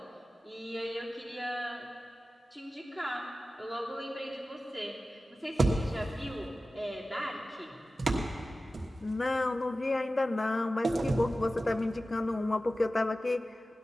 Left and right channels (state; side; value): normal; both; correlation 0.95